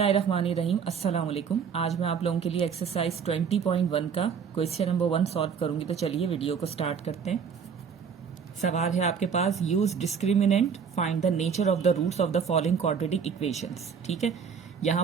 अस्सलाम वालेकुम। आज मैं आप लोगों के लिए एक्सरसाइज 20.1 का क्वेश्चन नंबर 1 सॉल्व करूंगी। तो चलिए वीडियो को स्टार्ट करते हैं। सवाल है आपके पास, use discriminant, find the nature of the roots of the following quadratic equations. ठीक है, यहाँ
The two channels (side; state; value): left; quieter; 6.6 dB